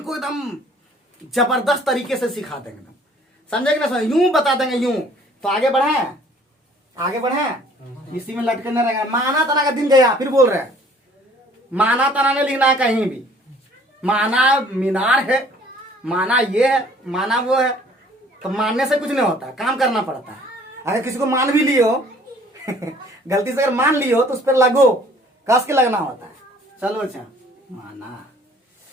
को एकदम जबरदस्त तरीके से सिखा देंगे, समझे कि ना समझे, यूं बता देंगे यूं। तो आगे बढ़े, इसी में लटके न रहेंगे। माना तना का दिन गया, फिर बोल रहे हैं माना तना ने लिखना है कहीं भी, माना मीनार है, माना ये है, माना वो है। तो मानने से कुछ नहीं होता, काम करना पड़ता है। अगर किसी को मान भी लियो गलती से अगर मान लियो तो उस पर लगो, कस के लगना होता है। चलो अच्छा माना,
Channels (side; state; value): both; normal; correlation 0.55